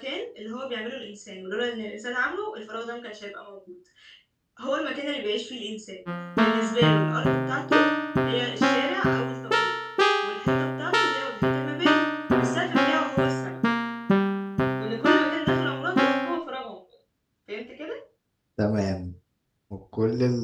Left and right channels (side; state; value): both; identical; correlation 1.00